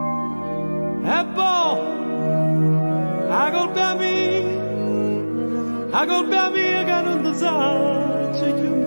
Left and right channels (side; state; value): both; inverted; correlation -1.00